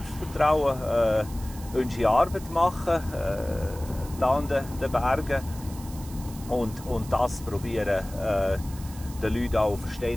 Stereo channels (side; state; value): right; noise; hiss, 18 dB below the sound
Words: unsere Arbeit machen, da an den Bergen. Und das probieren, den Leuten auch